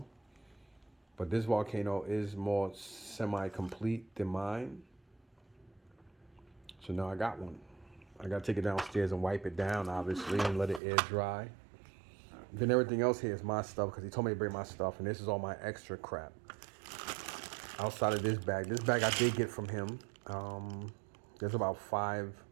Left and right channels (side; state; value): left; drops out; at 10.8 s